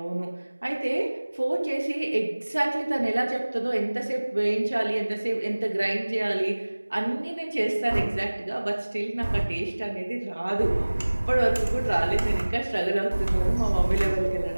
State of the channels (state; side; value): inverted; both; correlation -1.00